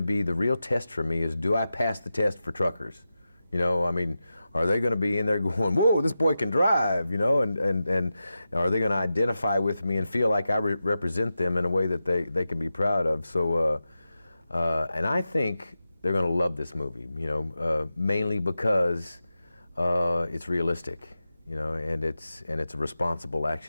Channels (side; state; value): both; inverted; correlation -0.92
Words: be the real test for me, is do I pass the test for truckers? You know, I mean, are they going to be in there going, "Whoa, this boy can drive," you know, and are they going to identify with me and feel like I represent them in a way that they can be proud of? So, and I think they're going to love this movie, you know, mainly because it's realistic, you know, and it's a responsible